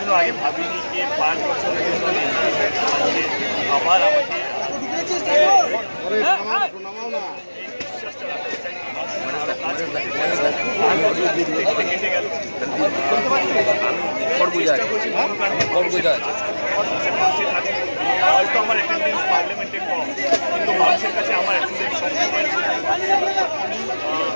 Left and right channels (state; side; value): inverted; both; correlation -1.00